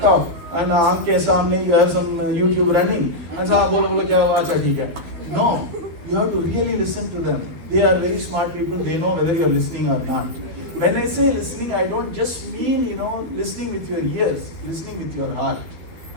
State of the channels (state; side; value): late; left; 12 ms